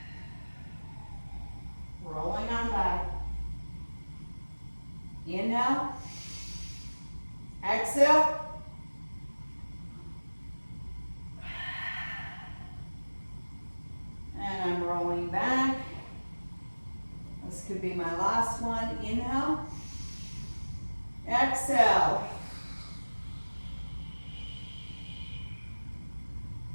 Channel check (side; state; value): both; inverted; correlation -1.00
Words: Rolling on back. Inhale, exhale. And I'm rolling back. This could be my last one. Inhale, exhale.